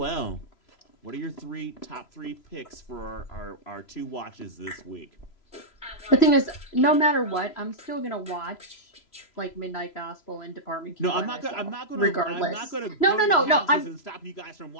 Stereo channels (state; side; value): late; right; 3.0 ms